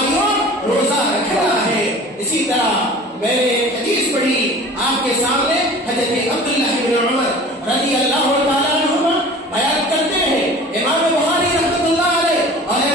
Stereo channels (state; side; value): normal; both; correlation 0.42